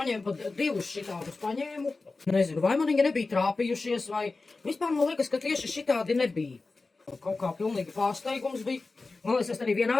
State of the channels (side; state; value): right; quieter; 3.7 dB